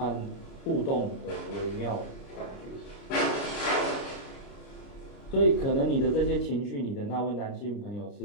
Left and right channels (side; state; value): right; late; 29 ms